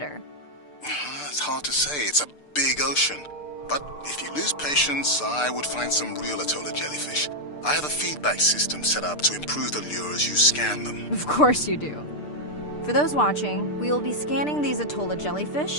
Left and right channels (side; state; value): right; late; 6.7 ms